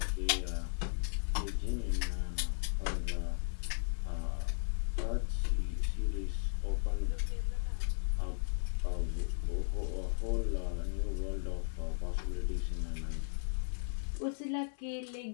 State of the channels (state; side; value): silent; right; 54 dB below the other